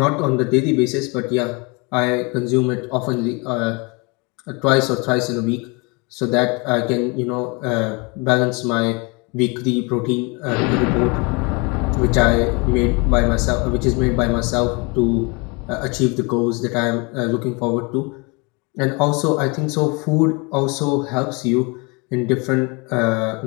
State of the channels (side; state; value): right; quieter; 29.7 dB